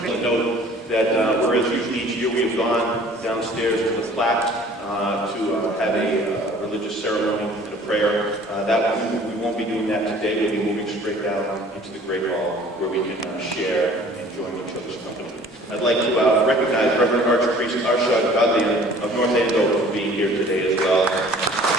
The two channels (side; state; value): both; normal; correlation 0.51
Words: I'll note that whereas usually each year we have gone downstairs to the flat to have a religious ceremony and a prayer, we won't be doing that today. We'll be moving straight down into the Great Hall where we can share and join each other's company. I'd like to recognize Reverend Archpriest Arshad Gadlian of North Andover for being here today as well.